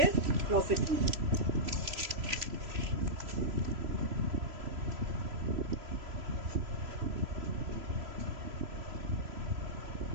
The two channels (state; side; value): late; left; 3.0 ms